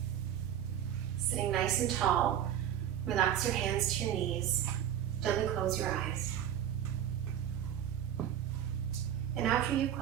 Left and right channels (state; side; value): quieter; left; 10.3 dB